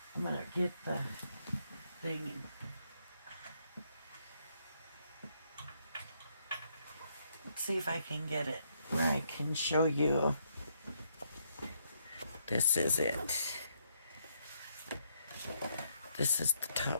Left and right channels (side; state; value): both; inverted; correlation -0.73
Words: I'm gonna get the thing. Let's see if I can get it where I can show you. This is it. This is the